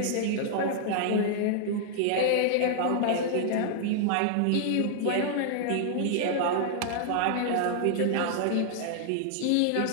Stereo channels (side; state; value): both; different; correlation -0.01